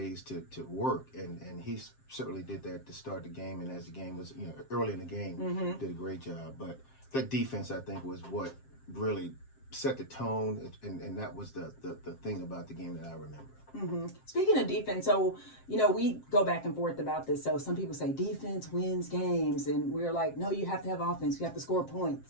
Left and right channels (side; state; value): right; late; 7.6 ms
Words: to work, and he certainly did that to start the game, and as the game was early in the game, did a great job. But that defense, I think, was what really set the tone, and that was the thing about the game that I remember. Speaking of defense, so we go back and forth about this. So some people say defense wins games, and we're like, no, you have to have offense. You have to score